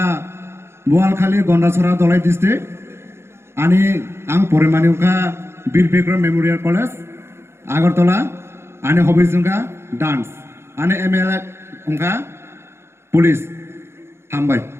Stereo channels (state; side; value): late; left; 0.12 ms